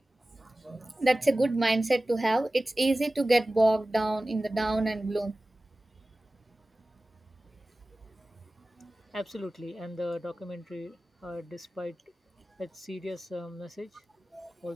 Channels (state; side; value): normal; both; correlation 0.97